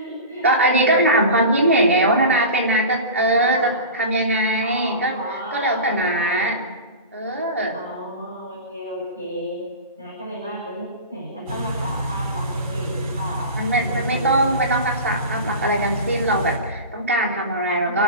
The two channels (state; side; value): inverted; both; correlation -0.31